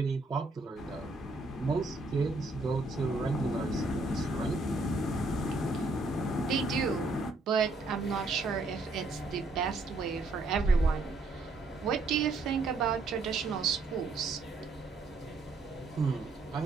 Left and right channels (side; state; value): left; quieter; 3.2 dB